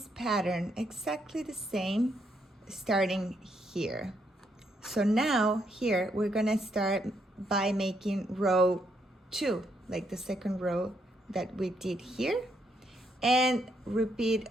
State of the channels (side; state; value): both; normal; correlation 0.75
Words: pattern exactly the same, starting here. So now here we're gonna start by making row 2, like the second row that we did here, and repeat